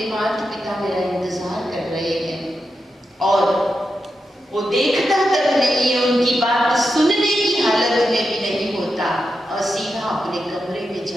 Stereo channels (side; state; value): both; normal; correlation 0.88